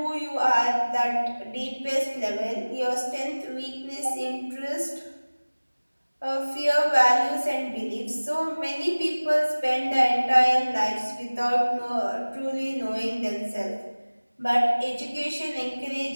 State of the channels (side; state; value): both; inverted; correlation -1.00